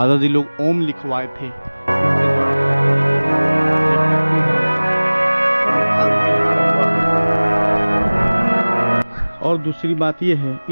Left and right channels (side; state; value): both; inverted; correlation -1.00